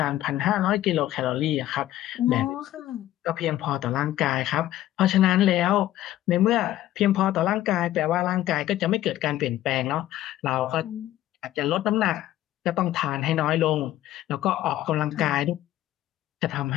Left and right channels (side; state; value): right; quieter; 13.9 dB